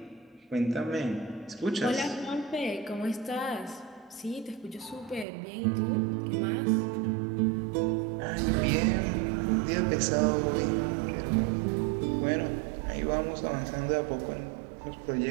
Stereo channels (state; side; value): drops out; left; at 5.2 s